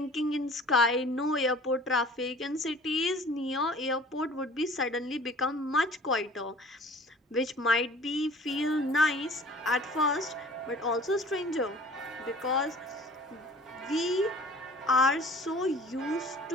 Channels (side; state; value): both; normal; correlation 0.48